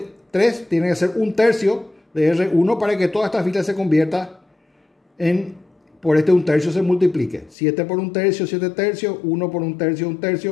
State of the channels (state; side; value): drops out; right; at 7.6 s